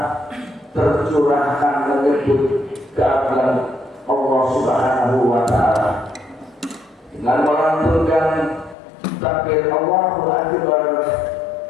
tercurahkan menyebut keagungan Allah Subhanahu wa Ta'ala dengan melantunkan takbir Allahu Akbar,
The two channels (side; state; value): right; drops out; at 8.8 s